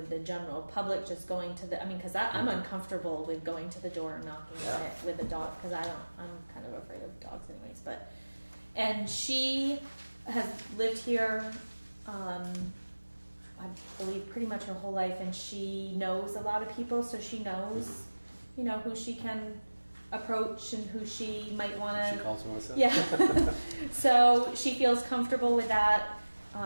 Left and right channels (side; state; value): both; inverted; correlation -1.00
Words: the general public, just going to the, because I'm uncomfortable with going to the door and knocking on it with a dog, because I'm kind of afraid of dogs anyways, and she has lived here, I believe pretty much her whole life, and she knows a lot of people, so she knows, who she can approach and who she might want to. She calls Melissa. Yeah. So she feels comfortable with that.